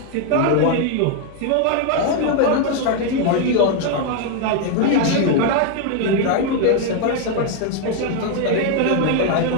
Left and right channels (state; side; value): different; both; correlation 0.01